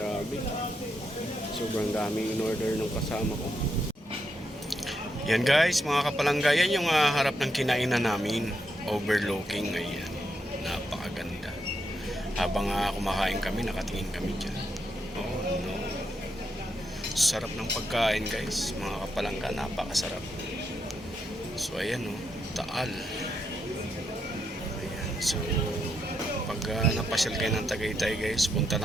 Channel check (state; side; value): normal; both; correlation 0.81